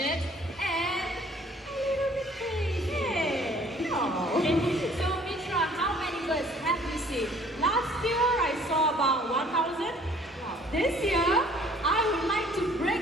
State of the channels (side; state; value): both; normal; correlation 0.56